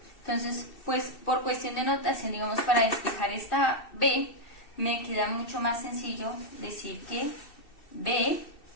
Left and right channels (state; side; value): late; right; 2.7 ms